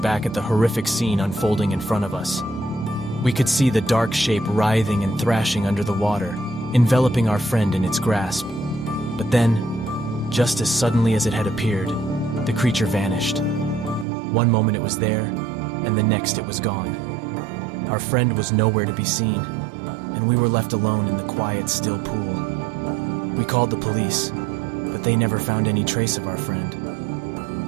back at the horrific scene unfolding in front of us. We could see the dark shape writhing and thrashing under the water, enveloping our friend in its grasp. But then, just as suddenly as it had appeared, the creature vanished. One moment it was there, and the next it was gone. Our friend was nowhere to be seen, and we were left alone in the quiet, still pool. We called the police, but they never found any trace of our friend.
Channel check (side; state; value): left; drops out; at 14.1 s